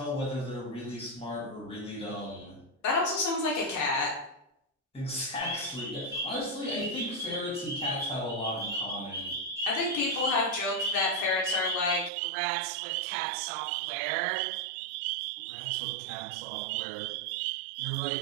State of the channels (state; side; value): drops out; left; at 12.1 s